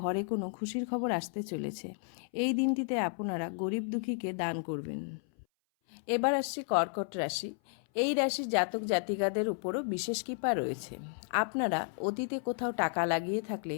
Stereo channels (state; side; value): silent; right; 56 dB below the other